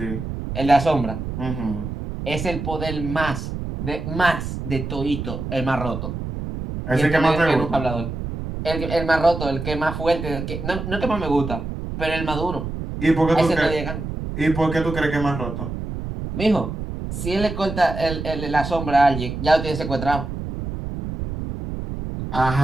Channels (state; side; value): noise; right; rumble, 6 dB below the sound